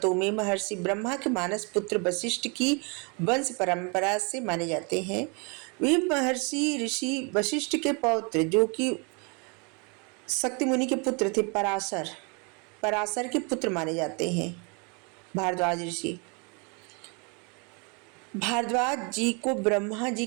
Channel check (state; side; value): quieter; left; 33.1 dB